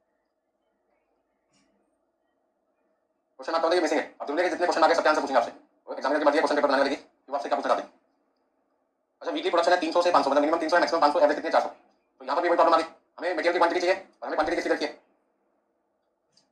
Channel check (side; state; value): both; identical; correlation 1.00